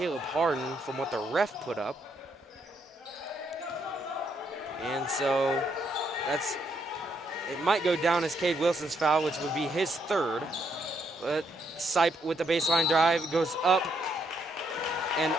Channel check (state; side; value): normal; both; correlation 0.74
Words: Harden from what the ref put up. And so it might go down as Cade Wilson's foul, which would be his 3rd. But Sipe with the baseline drive goes up and